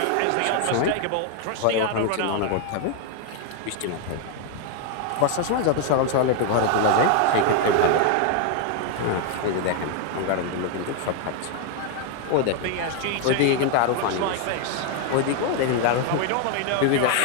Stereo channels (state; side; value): different; both; correlation 0.00